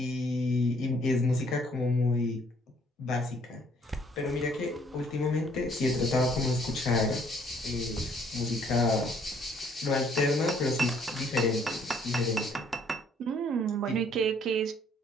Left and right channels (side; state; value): both; normal; correlation 0.63